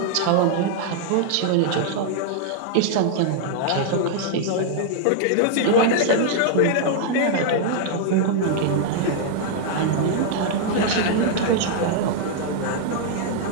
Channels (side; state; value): both; different; correlation -0.01